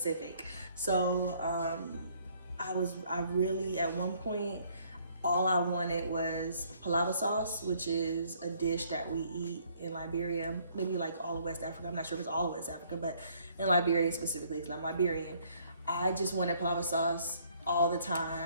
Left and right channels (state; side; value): inverted; both; correlation -0.63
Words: So I really, at one point, all I wanted was palava sauce, which is a dish that we eat in Liberia, maybe like all of West Africa. I'm not sure if it's all of West Africa, but in Liberia specifically, because I'm Liberian. I just wanted palava sauce all the